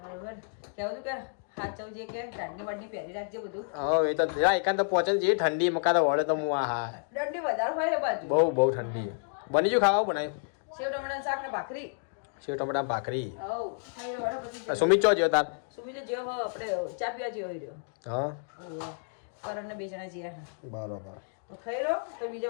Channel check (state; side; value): silent; right; digital silence